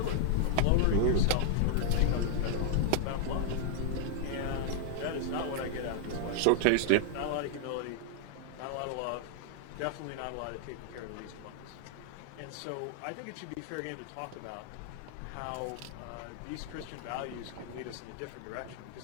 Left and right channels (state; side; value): different; both; correlation 0.00